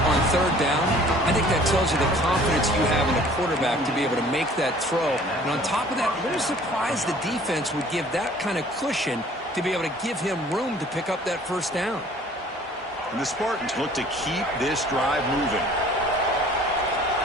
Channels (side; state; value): both; normal; correlation 0.52